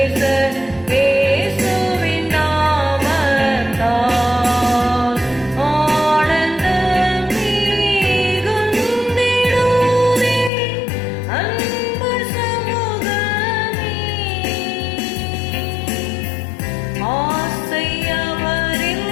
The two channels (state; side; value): drops out; right; at 10.5 s